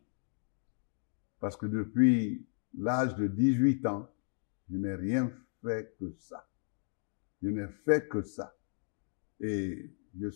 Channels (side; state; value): right; silent; digital silence